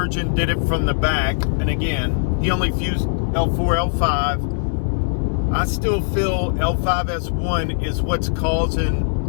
did it from the back, and again, he only fused L4, L5. I still feel L5S1 is what's causing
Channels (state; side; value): silent; right; digital silence